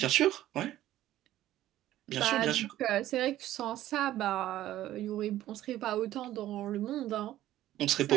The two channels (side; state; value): left; quieter; 13.8 dB